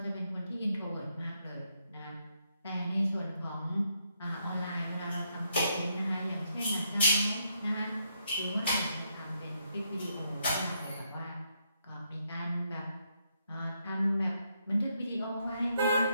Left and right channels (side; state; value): both; inverted; correlation -0.77